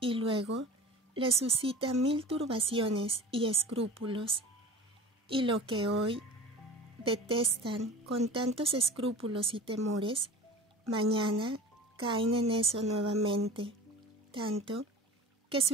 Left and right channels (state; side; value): normal; both; correlation 0.36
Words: luego les suscita 1000 turbaciones y escrúpulos. Y lo que hoy detestan con tantos escrúpulos y temores, mañana caen en eso nuevamente, tanto que